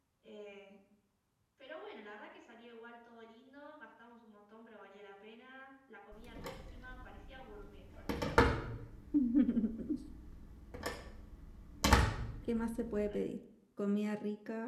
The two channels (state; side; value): identical; both; correlation 1.00